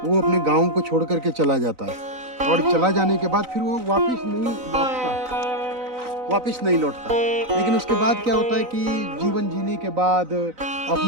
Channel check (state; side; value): late; left; 4.0 ms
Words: वो अपने गांव को छोड़ करके चला जाता है। और चला जाने के बाद फिर वो वापस नहीं लौटता। लेकिन उसके बाद क्या होता है कि जीवन जीने के बाद,